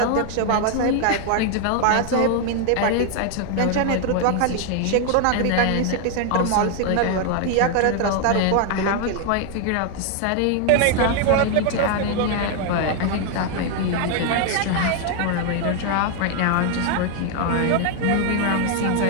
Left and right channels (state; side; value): different; both; correlation 0.00